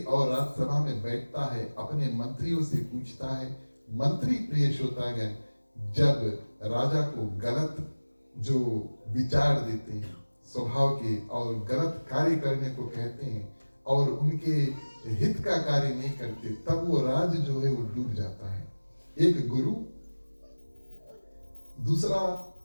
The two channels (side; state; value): both; inverted; correlation -1.00